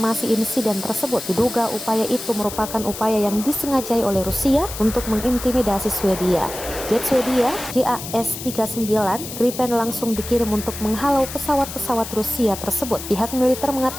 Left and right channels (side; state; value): left; noise; hiss, 10 dB below the sound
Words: insiden tersebut. Diduga upaya itu merupakan upaya yang disengajai oleh Rusia untuk mengintimidasi Swedia. Jet Swedia JAS-39 Gripen langsung dikirim untuk menghalau pesawat-pesawat Rusia tersebut. Pihak militer